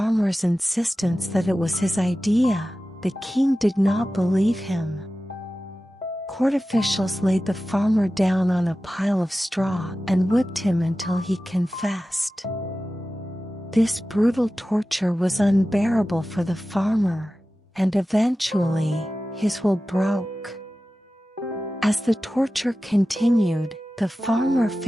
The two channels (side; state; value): both; normal; correlation 0.95